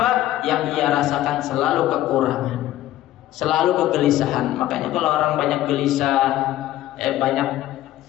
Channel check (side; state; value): right; quieter; 14.1 dB